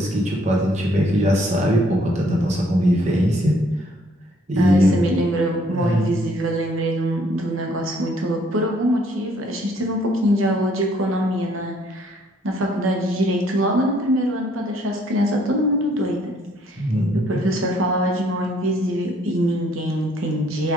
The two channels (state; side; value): normal; both; correlation 0.64